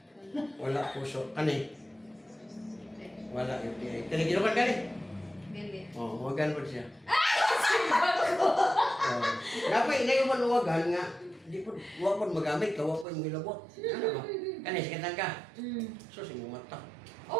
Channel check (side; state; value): left; drops out; at 13.1 s